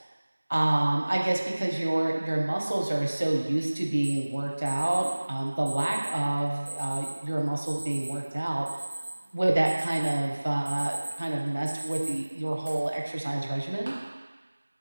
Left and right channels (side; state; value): both; inverted; correlation -1.00